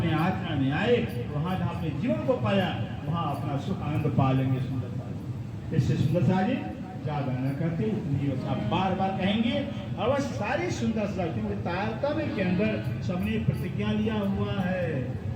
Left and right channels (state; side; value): identical; both; correlation 1.00